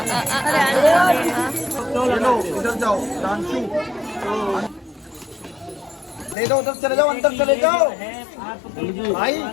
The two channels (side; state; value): right; drops out; at 6.4 s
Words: चलो इधर जाओ डांसू दे दो, उधर चले जाओ, अंदर चले जाओ भाई।